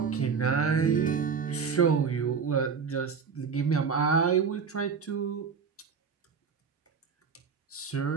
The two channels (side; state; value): left; quieter; 6.0 dB